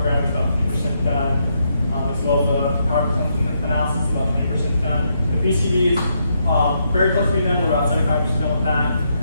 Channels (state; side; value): inverted; both; correlation -0.78